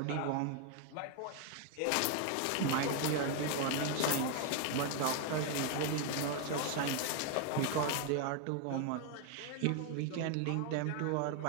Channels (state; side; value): different; both; correlation 0.01